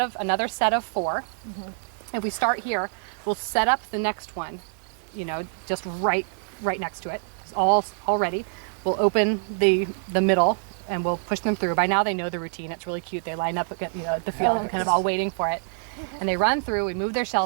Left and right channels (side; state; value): left; silent; 61 dB below the other